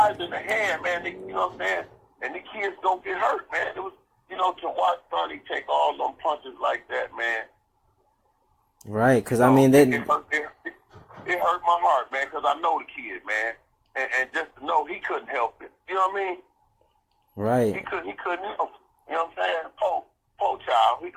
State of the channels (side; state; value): both; identical; correlation 1.00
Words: in the hand, man. They, you know what I'm saying? And the kids don't get hurt, man. It was, you know, to watch Sonny take all them punches like that, man. Right, because, I mean, they... It hurt my heart, man, because I know the kid, man. And just to know he couldn't help it. You know what I mean? Right. He couldn't help it. You know what I'm saying? Poor child, he